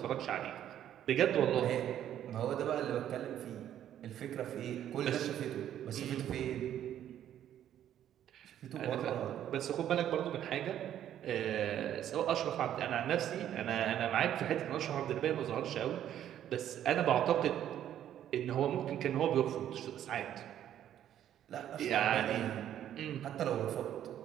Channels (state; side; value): quieter; left; 10.9 dB